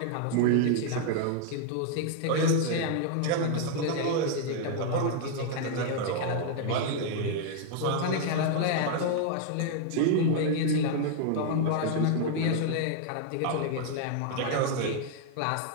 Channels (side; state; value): both; different; correlation 0.00